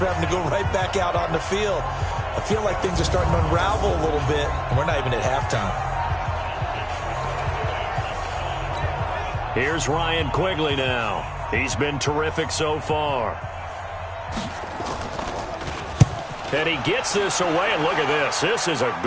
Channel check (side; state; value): both; identical; correlation 1.00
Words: having to go right back out on the field. I feel like things are starting to unravel a little bit, and we're not even at halftime. Here's Ryan Quigley now. He's been terrific so far. And he gets this away, and look at this. This is a